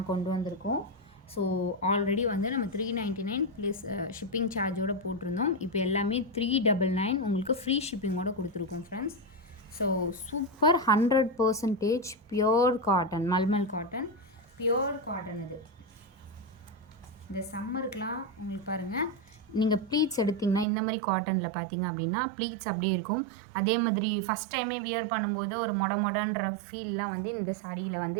கொண்டு வந்திருக்கோம். ஸோ ஆல்ரெடி வந்து நம்ம 399 ப்ளஸ் ஷிப்பிங் சார்ஜோடு போட்டிருந்தோம். இப்போ எல்லாமே 399 உங்களுக்கு ஃப்ரீ ஷிப்பிங்கோடு கொடுத்துருக்கோம் friends. So super 100% pure cotton, mulmul cotton, pure cotton. இது இந்த சம்மருக்கெலாம் உங்களுக்கு பாருங்கள், நீங்கள் ப்ளீட்ஸ் எடுத்திங்கன்னா இந்த மாதிரி காட்டனில் பார்த்தீங்க அப்படின்னா ப்ளீட்ஸ் அப்படியே இருக்கும். அதே மாதிரி ஃபஸ்ட் டைமே வியர் பண்ணும்போது ஒரு மொடன்ற ஃபீல்லாம் வந்து இந்த சாரியில்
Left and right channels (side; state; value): left; drops out; at 20.7 s